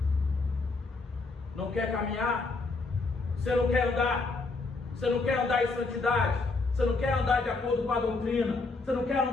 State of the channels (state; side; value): quieter; right; 3.7 dB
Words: Não quer caminhar? Você não quer andar? Você não quer andar em santidade? Você não quer andar de acordo com a doutrina? Você não quer